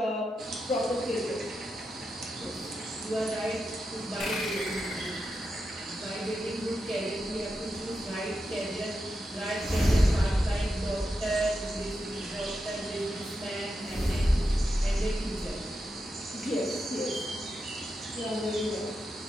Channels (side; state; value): both; normal; correlation 0.88